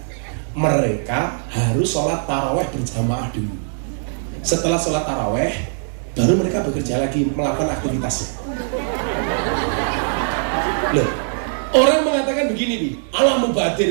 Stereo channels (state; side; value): silent; left; digital silence